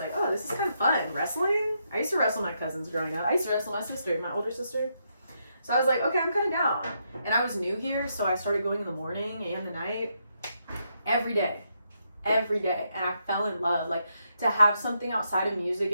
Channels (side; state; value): both; inverted; correlation -0.79